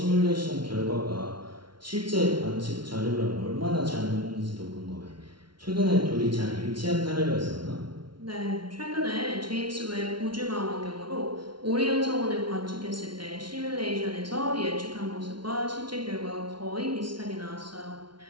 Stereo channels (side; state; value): left; late; 0.73 ms